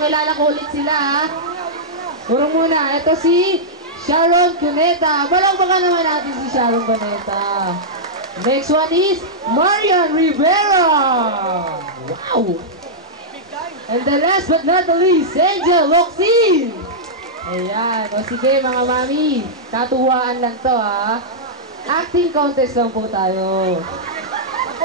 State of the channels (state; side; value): normal; both; correlation -0.09